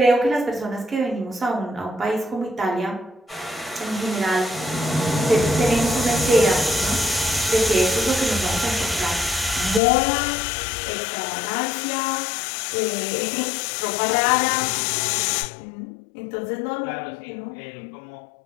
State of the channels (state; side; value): drops out; right; at 9.8 s